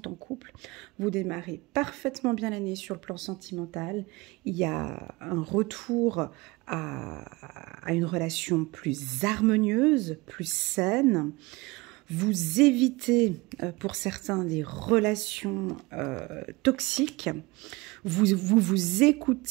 en couple, vous démarrez parfaitement bien l'année sur le plan sentimental. Il y a un retour à une relation plus harmonieuse, plus saine. Vous évitez pour certains des relations toxiques. Vous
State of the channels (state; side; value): quieter; left; 23.0 dB